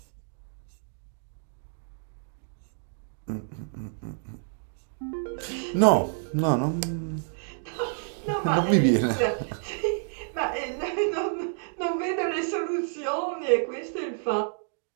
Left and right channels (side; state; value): left; silent; digital silence